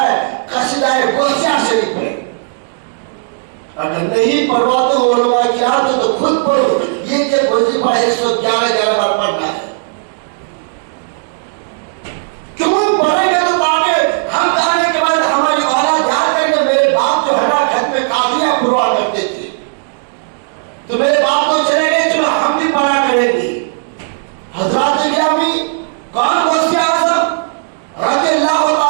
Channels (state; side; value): silent; left; digital silence